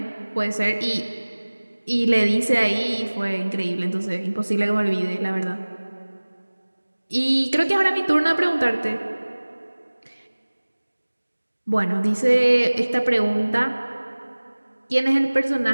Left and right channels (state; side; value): inverted; both; correlation -1.00